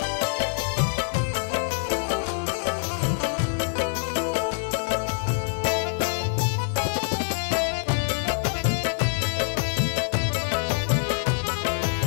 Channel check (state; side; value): silent; right; digital silence